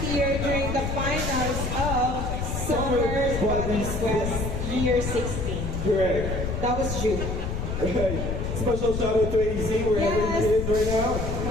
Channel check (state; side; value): noise; left; rumble, 3 dB below the sound